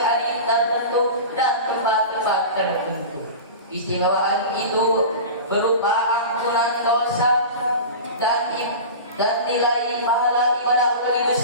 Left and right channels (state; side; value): inverted; both; correlation -0.31